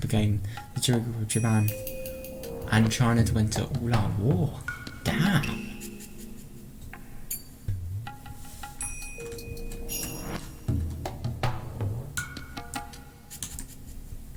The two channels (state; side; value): identical; both; correlation 1.00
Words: the trigger of Japan and China to enter all-out war. Damn!